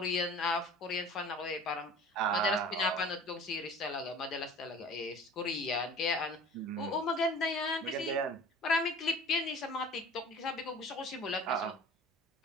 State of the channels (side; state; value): both; normal; correlation 0.43